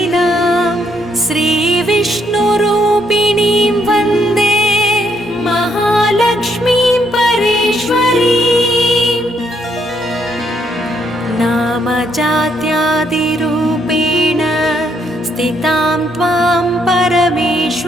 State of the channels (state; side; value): normal; both; correlation 0.72